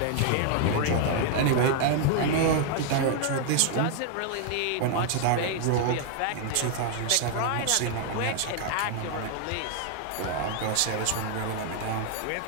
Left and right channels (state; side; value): different; both; correlation 0.00